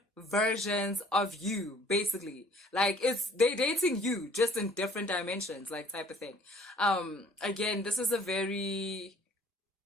versions of you, basically. They're dating you just in different dimensions, type of thing. Again, this is a very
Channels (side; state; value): both; normal; correlation 0.55